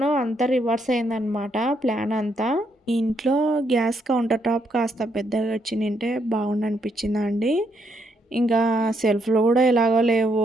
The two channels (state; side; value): normal; both; correlation 0.75